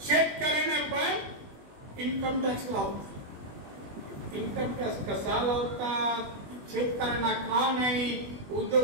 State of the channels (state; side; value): late; left; 21 ms